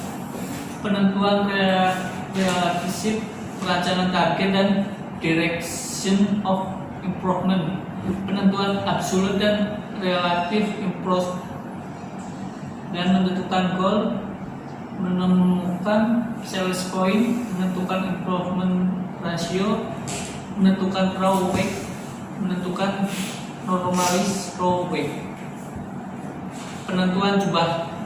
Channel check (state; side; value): identical; both; correlation 1.00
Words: penentuan relationship, perencanaan target dan direction of improvement, penentuan absolute dan relative improvement, dan menentukan goal, menemukan sales point, menentukan improvement ratio, menentukan raw weight, menentukan normalis raw weight. Penentuan jumlah